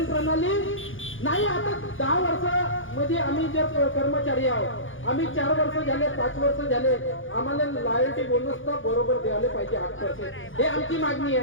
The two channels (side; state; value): right; late; 0.58 ms